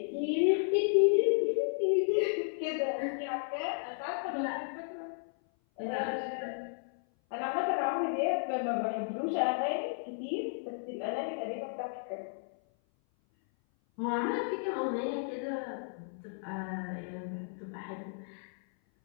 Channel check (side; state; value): right; silent; 55 dB below the other